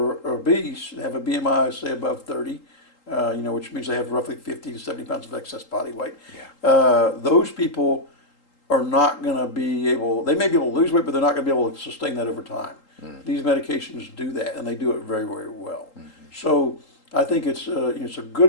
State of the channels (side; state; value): right; late; 3.8 ms